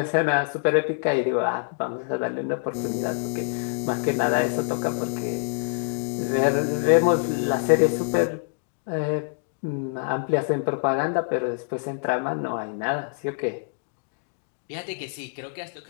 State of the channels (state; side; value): silent; right; digital silence